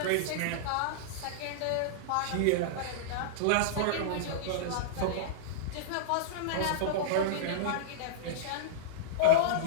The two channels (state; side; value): different; both; correlation -0.03